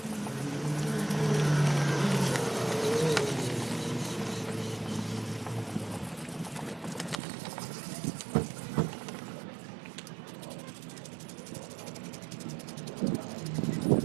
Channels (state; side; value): drops out; left; at 7.2 s